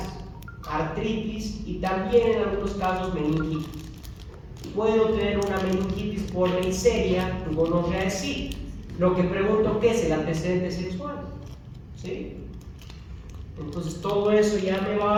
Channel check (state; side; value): identical; both; correlation 1.00